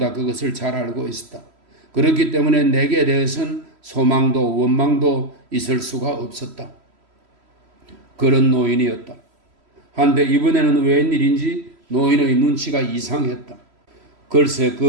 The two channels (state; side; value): late; left; 3.0 ms